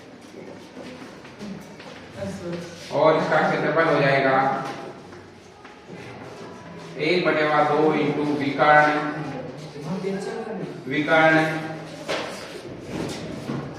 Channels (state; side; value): identical; both; correlation 1.00